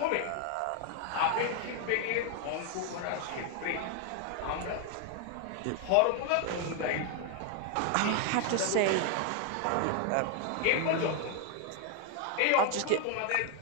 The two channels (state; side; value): different; both; correlation 0.01